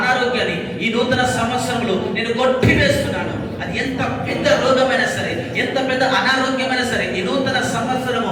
ఈ నూతన సంవత్సరంలో నేను కొట్టివేస్తున్నాను. అది ఎంత పెద్ద రోగమైనా సరే, ఎంత పెద్ద అనారోగ్యమైనా సరే, ఈ నూతన సంవత్సరము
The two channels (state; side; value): identical; both; correlation 1.00